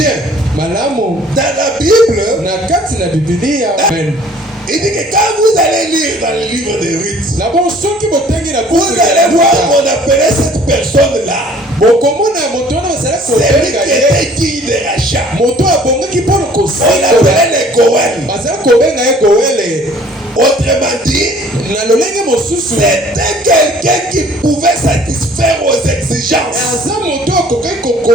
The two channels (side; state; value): both; normal; correlation 0.54